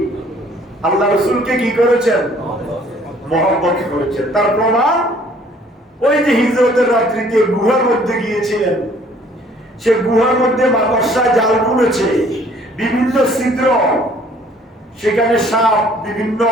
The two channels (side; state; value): both; normal; correlation 0.58